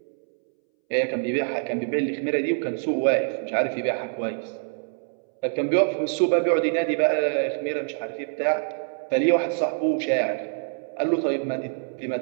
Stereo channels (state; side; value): silent; left; 62 dB below the other